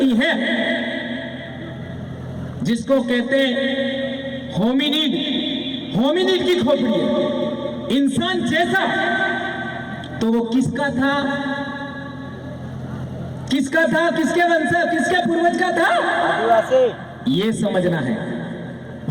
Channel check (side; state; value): both; identical; correlation 1.00